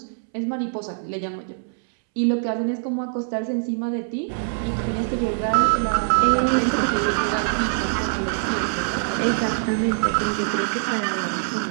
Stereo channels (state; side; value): silent; left; 63 dB below the other